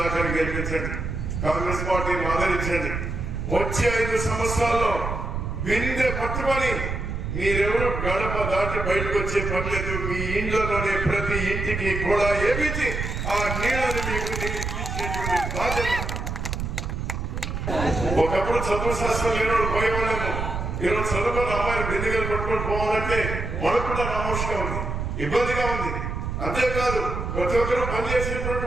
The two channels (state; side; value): noise; right; rumble, 4 dB below the sound